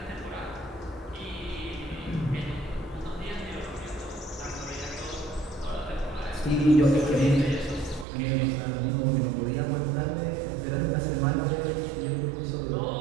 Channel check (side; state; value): left; drops out; at 8.1 s